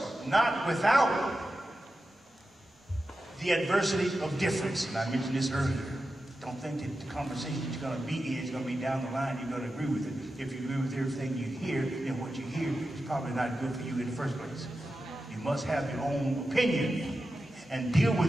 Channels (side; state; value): both; normal; correlation 0.91